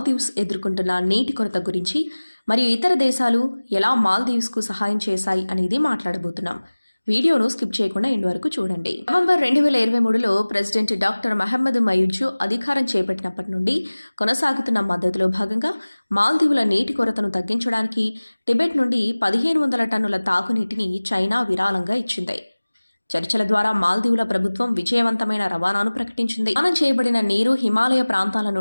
ఎదుర్కొంటున్న నీటి కొరత గురించి మరియు ఇతర దేశాలు ఎలా మాల్దీవ్స్కు సహాయం చేశాయి అనేది మాట్లాడబోతున్నాం. వీడియోను స్కిప్ చేయకుండా ఎండ్ వరకు చూడండి. నవంబర్ 2023లో ప్రెసిడెంట్ డాక్టర్ మహమ్మద్ మయూజు అధికారం చేపట్టినప్పటి నుండి కొనసాగుతున్న మద్దతులో భాగంగా మాల్దీవుల నీటి కొరతను తగ్గించడానికి టిబెట్ నుండి 1500 టన్నుల తాగునీటిని చైనా విరాళంగా ఇచ్చింది. చర్చల ద్వారా మాల్దీవుల ప్రభుత్వం విజయవంతమైన రవాణాను ప్రకటించింది. రవాణా చేయబడిన నీరు హిమాలయ ప్రాంతాల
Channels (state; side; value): inverted; both; correlation -1.00